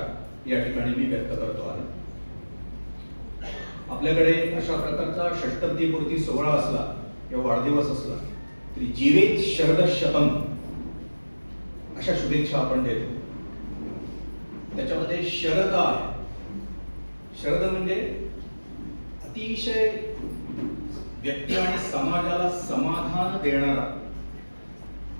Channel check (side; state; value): both; inverted; correlation -1.00